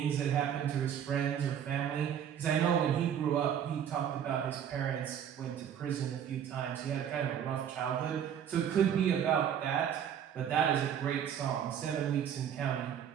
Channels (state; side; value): quieter; left; 9.0 dB